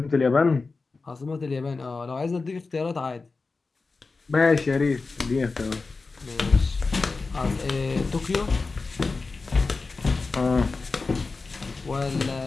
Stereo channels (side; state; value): right; quieter; 4.0 dB